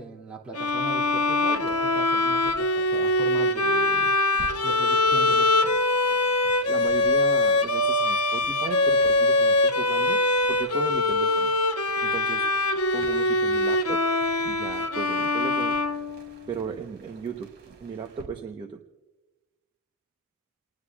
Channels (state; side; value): normal; both; correlation -0.03